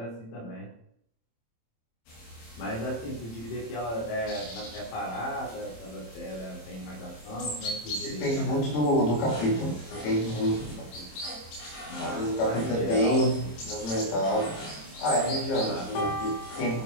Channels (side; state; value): right; late; 26 ms